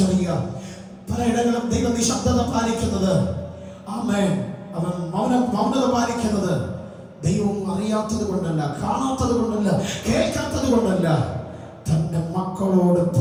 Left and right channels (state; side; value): identical; both; correlation 1.00